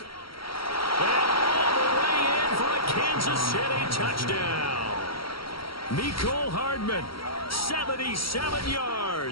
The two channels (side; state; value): right; late; 0.74 ms